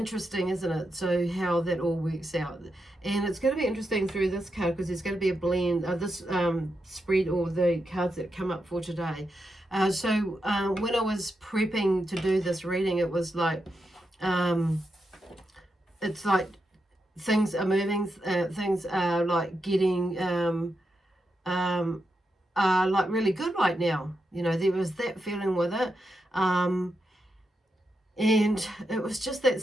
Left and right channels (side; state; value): both; normal; correlation 0.86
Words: isn't it? So how that all works out. And it's going to be interesting through this card because there's going to be a blend of this spread, or the cards that come up for today. So when I was prepping to do this reading, it was like it's like things are moving, things are like getting like really good right now. You know, there was that feeling with it. And it was just that